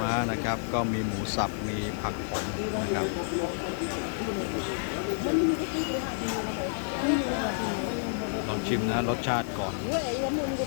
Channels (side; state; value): right; silent; digital silence